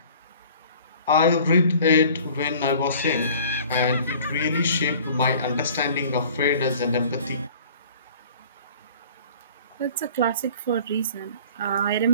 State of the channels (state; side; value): inverted; both; correlation -0.49